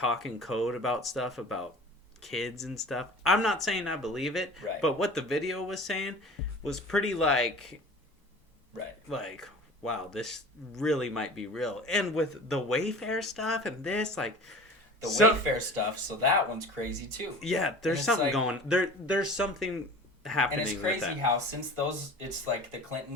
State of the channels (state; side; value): normal; both; correlation 0.40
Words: in code about stuff about kids and stuff. I'm not saying I believe it, but what the video was saying was pretty like wow, this really might be real. And with the Wayfair stuff and this like the Wayfair stuff, so that one's crazy too. Yeah, there's something like, going there's something happening. And it's crazy with that. how since it's like the